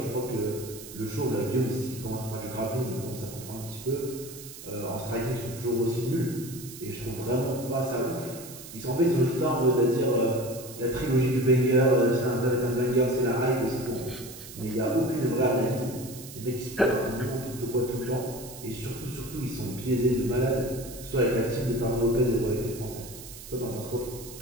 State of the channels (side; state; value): right; noise; hiss, 14 dB below the sound